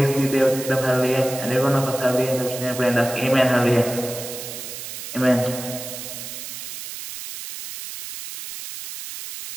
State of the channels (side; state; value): right; noise; hiss, 9 dB below the sound